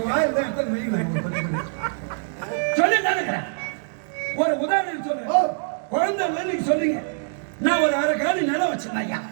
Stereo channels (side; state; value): left; silent; digital silence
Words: ஒரு உதாரணம் சொல்றேன். குழந்தை நீங்க சொல்றீங்க. நான் ஒரு அரை காலி நிலம் வச்சிருந்தேன் ஐயா.